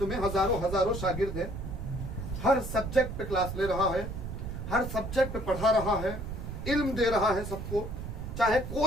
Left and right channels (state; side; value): noise; right; rumble, 6 dB below the sound